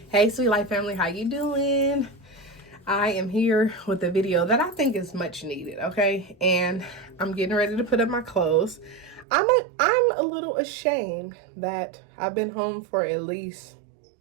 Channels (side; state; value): left; drops out; at 9.2 s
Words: Hey, SweetLife Family, how you doing? I am here with a video that I think is much needed, okay? And I'm getting ready to put up my clothes. I'm a little ashamed that I've been home for at least